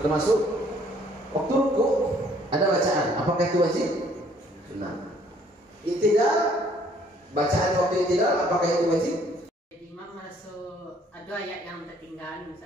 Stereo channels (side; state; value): both; normal; correlation 0.61